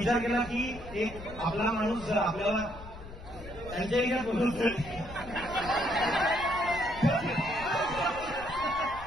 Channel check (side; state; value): left; noise; rumble, 14 dB below the sound